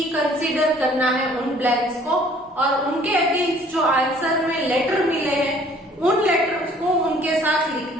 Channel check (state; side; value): normal; both; correlation 0.56